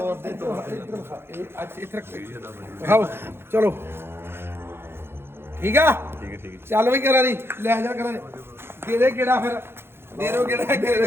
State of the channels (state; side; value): late; left; 0.11 ms